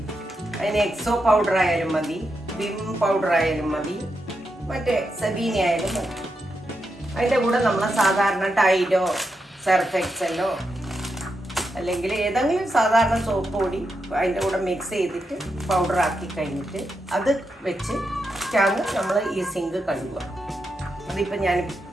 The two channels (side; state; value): both; normal; correlation 0.85